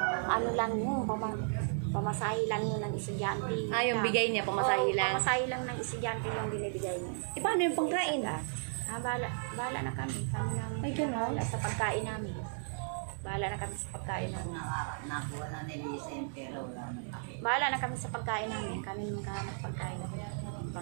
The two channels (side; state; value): left; silent; digital silence